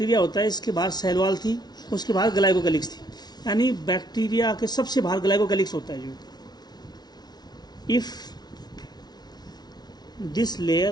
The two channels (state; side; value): late; right; 0.19 ms